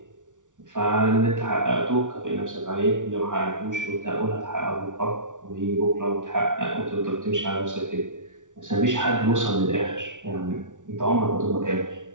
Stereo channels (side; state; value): left; late; 0.87 ms